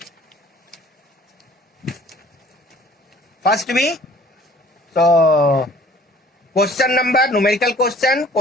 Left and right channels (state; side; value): normal; both; correlation 0.52